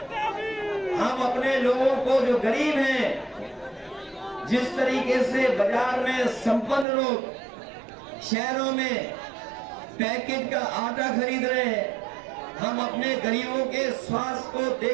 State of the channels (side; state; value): left; drops out; at 6.9 s